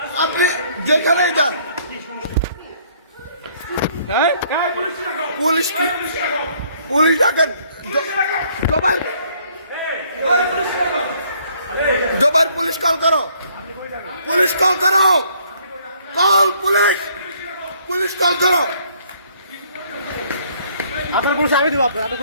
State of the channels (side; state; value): both; inverted; correlation -0.63